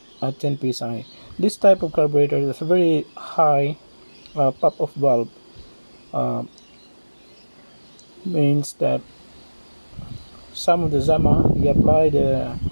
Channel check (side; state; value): both; inverted; correlation -1.00